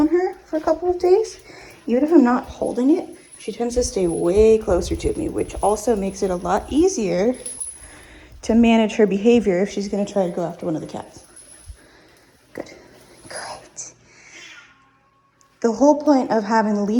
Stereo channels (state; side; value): identical; both; correlation 1.00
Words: her for a couple of days, even if I'm not holding it, she tends to stay way closer to me, which also makes it a lot easier to manage her behavior if she's gonna try to go after one of the cats. Good. Great. The whole point of having the